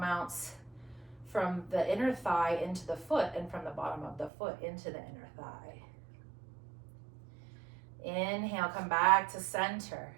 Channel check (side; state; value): left; drops out; at 4.3 s